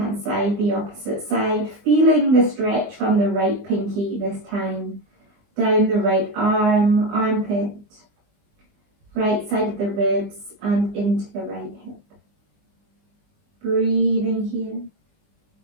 side, the opposite side, feeling the stretch from the right pinky this time, down the right arm, armpit, right side of the ribs and into the right hip. Breathing here.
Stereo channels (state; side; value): late; left; 20 ms